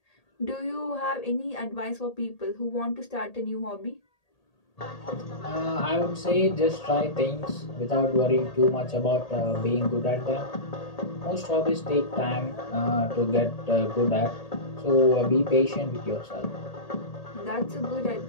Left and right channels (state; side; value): late; right; 1.8 ms